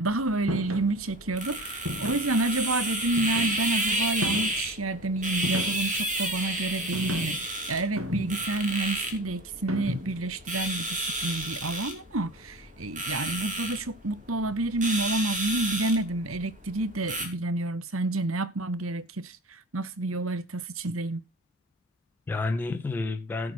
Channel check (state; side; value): normal; both; correlation 0.36